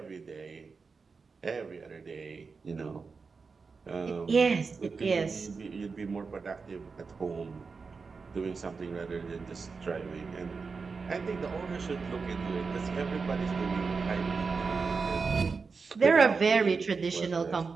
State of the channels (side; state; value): left; quieter; 4.8 dB